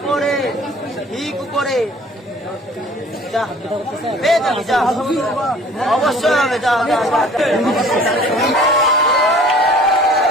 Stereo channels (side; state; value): both; normal; correlation 0.51